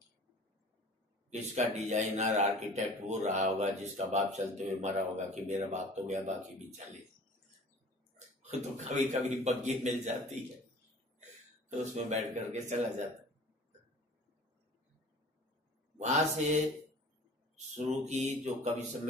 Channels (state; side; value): normal; both; correlation 0.45